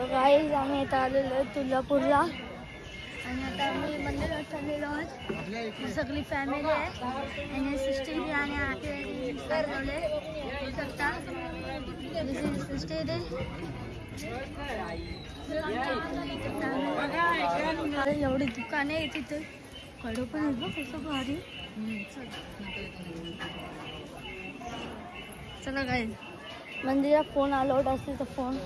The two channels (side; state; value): both; identical; correlation 1.00